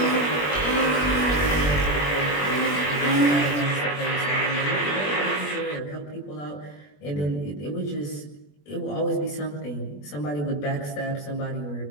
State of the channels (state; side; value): late; right; 21 ms